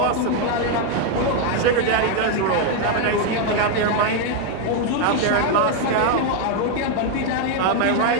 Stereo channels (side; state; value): both; different; correlation 0.01